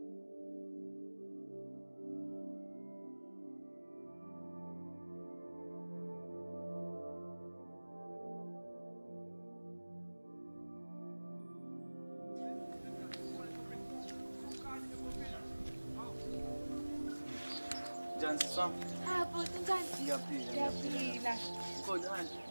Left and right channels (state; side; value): inverted; both; correlation -1.00